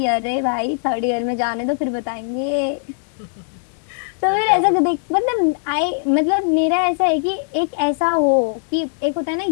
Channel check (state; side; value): silent; right; digital silence